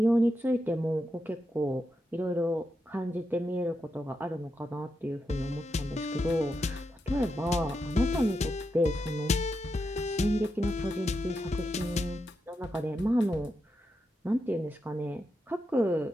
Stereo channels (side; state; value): both; normal; correlation 0.86